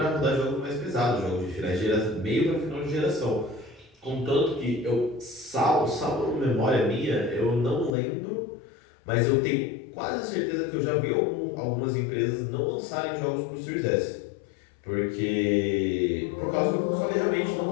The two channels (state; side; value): drops out; right; at 7.9 s